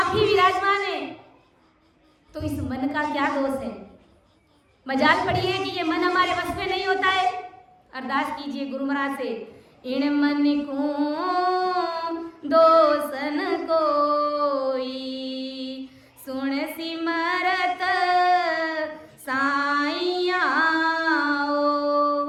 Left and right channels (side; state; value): both; identical; correlation 1.00